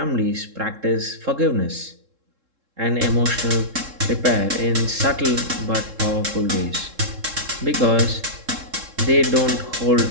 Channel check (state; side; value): late; left; 3.7 ms